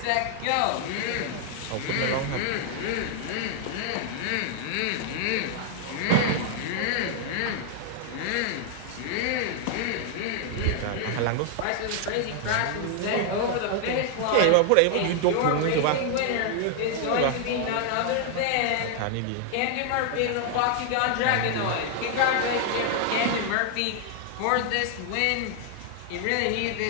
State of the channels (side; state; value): both; different; correlation 0.00